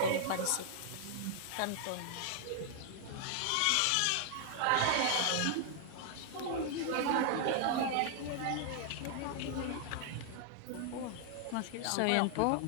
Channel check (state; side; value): different; both; correlation 0.00